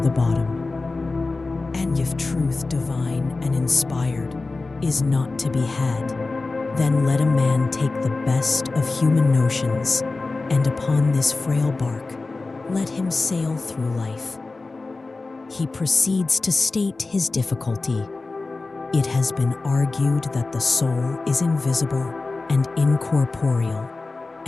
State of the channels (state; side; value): quieter; right; 3.6 dB